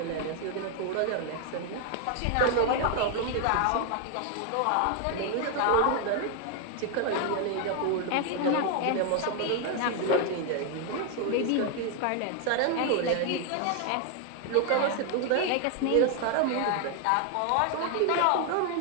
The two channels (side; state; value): both; different; correlation 0.01